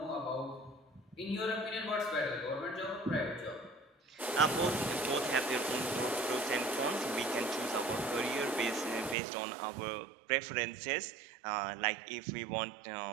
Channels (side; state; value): left; drops out; at 9.2 s